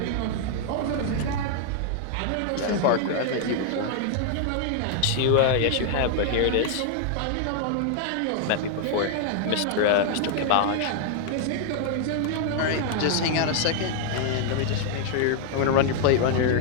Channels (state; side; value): different; both; correlation 0.00